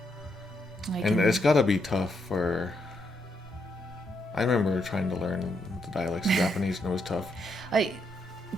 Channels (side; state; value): both; normal; correlation 0.79